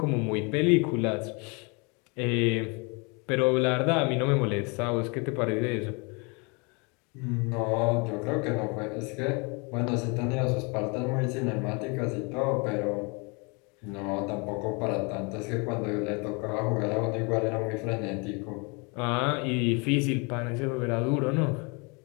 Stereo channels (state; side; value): quieter; right; 31.2 dB